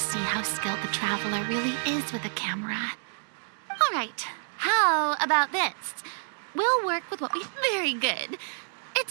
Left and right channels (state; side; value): silent; left; digital silence